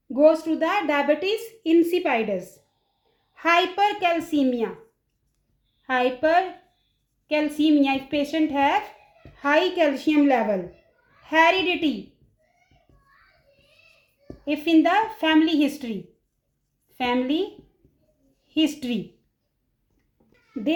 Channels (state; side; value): identical; both; correlation 1.00